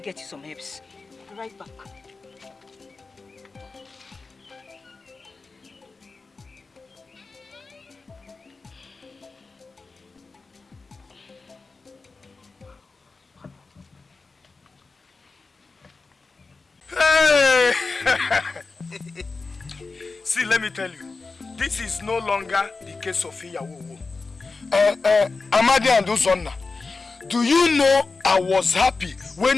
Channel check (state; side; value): quieter; right; 4.0 dB